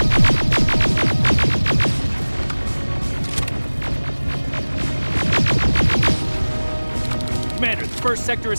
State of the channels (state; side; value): inverted; both; correlation -1.00